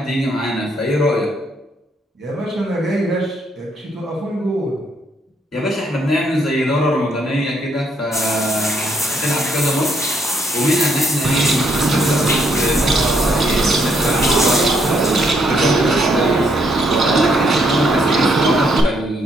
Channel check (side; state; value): both; normal; correlation 0.72